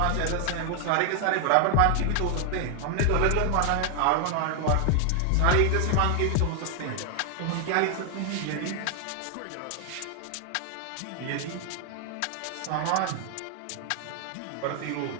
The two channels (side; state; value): both; different; correlation 0.00